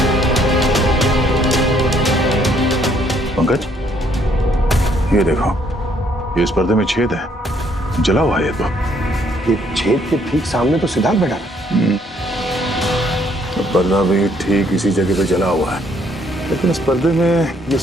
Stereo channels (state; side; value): normal; both; correlation 0.67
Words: पंकज ये देखो, ये इस पर्दे में छेद है, जला हुआ है। तो ये छेद के ठीक सामने तो सिद्धार्थ बैठा है। पर्दा भी ठीक इसी जगह पे जला हुआ है, लेकिन इस पर्दे में ये